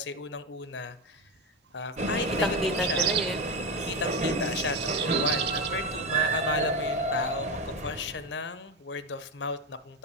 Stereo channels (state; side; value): normal; both; correlation 0.14